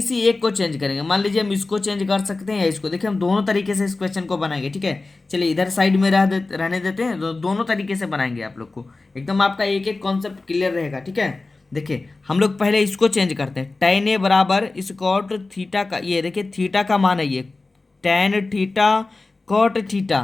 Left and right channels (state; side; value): quieter; right; 3.5 dB